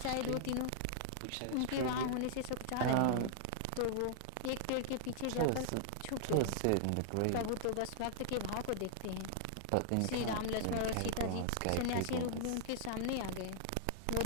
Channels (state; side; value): different; both; correlation -0.01